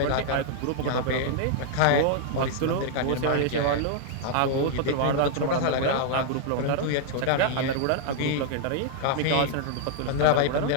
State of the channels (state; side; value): different; both; correlation 0.00